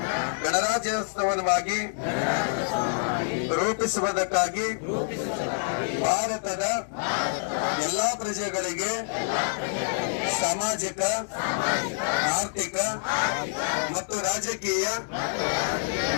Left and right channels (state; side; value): silent; right; digital silence